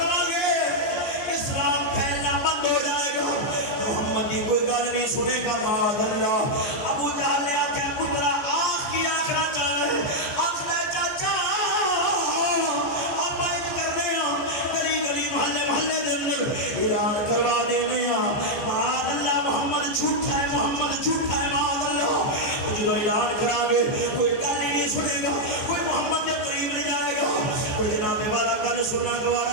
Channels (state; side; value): late; right; 14 ms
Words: اسلام پھیلنا بند ہو جائے گا محمد کی کوئی گل نہیں سنے گا معاذ اللہ. ابو جہل نے آکھیا پترا آخ کی آخنا چاہے آخنا چاچا آپ ایک کرنے گلی محلے دے اندر اعلان کروا دینے معاذ اللہ محمد جھوٹا ہے معاذ اللہ. جدو اعلان کرا گے کوئی گل ہی نہیں سنے گا کوئی محمد کے قریب نہیں جائے گا کوئی جناب والا گل سننا